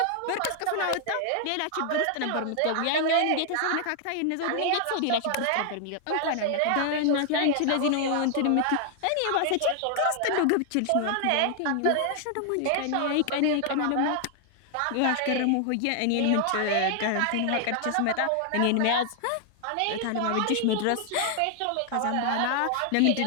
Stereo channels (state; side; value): different; both; correlation 0.00